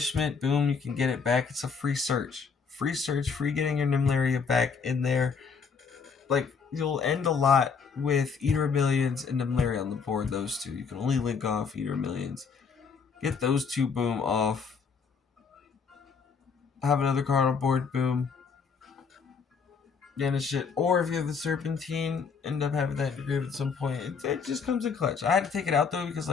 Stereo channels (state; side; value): quieter; right; 5.6 dB